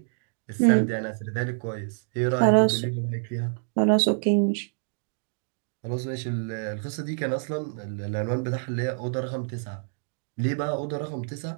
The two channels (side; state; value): left; silent; digital silence